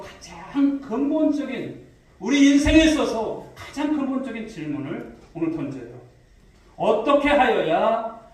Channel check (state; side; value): identical; both; correlation 1.00